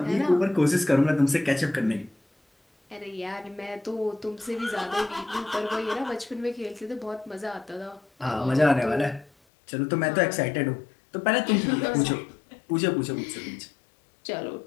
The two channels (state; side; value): drops out; right; at 9.3 s